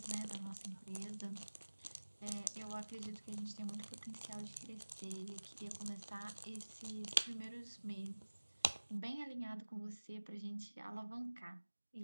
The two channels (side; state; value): both; inverted; correlation -1.00